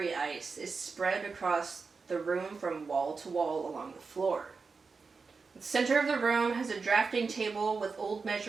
ice is spread across the room from wall to wall along the floor. The center of the room has a drafting table with old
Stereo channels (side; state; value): left; quieter; 4.7 dB